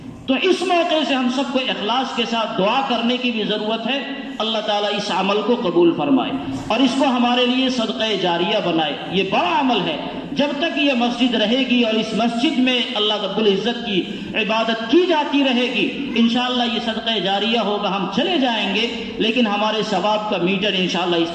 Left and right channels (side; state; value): both; identical; correlation 1.00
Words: تو اس موقع سے ہم سب کو اخلاص کے ساتھ دعا کرنے کی بھی ضرورت ہے، اللہ تعالیٰ اس عمل کو قبول فرمائے اور اس کو ہمارے لیے صدقہ جاریہ بنائے۔ یہ بڑا عمل ہے، جب تک یہ مسجد رہے گی اور اس مسجد میں اللہ رب العزت کی عبادت کی جاتی رہے گی، انشاءاللہ یہ صدقہ جاریہ ہوگا۔ ہم چلے جائیں گے لیکن ہمارے ثواب کا میٹر انشاءاللہ